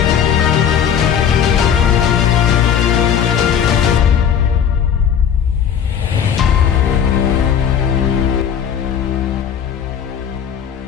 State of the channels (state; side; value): quieter; right; 8.4 dB